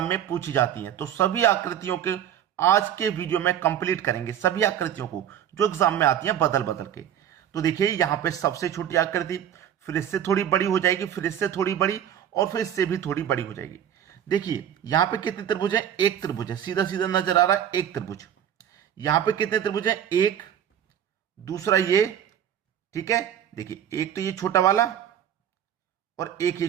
में पूछी जाती हैं। तो सभी आकृतियों के आज के वीडियो में कंप्लीट करेंगे, सभी आकृतियों को जो एग्जाम में आती हैं बदल बदल के। तो देखिए, यहाँ पे सबसे छोटी आकृति, फिर इससे थोड़ी बड़ी हो जाएगी, फिर इससे थोड़ी बड़ी, और फिर इससे भी थोड़ी बड़ी हो जाएगी। देखिए यहां पे कितने त्रिभुज है? एक त्रिभुज है, सीधा सीधा नजर आ रहा है, एक त्रिभुज। यहां पे कितने त्रिभुज है? एक, दूसरा ये, ठीक है। देखिए एक तो ये छोटा वाला और एक ये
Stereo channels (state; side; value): quieter; left; 9.9 dB